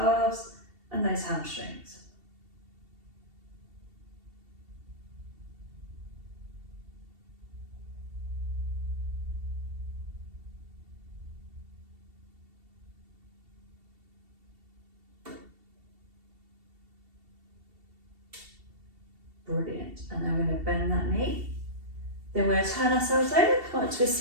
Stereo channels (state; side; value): late; left; 2.7 ms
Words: and those hamstrings. Brilliant. And then we're going to bend that knee. Then we're going to turn ourselves over, come up to a